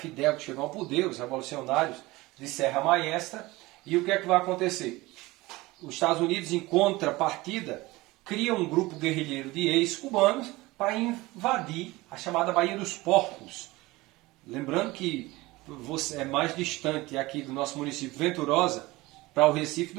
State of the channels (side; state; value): left; quieter; 20.5 dB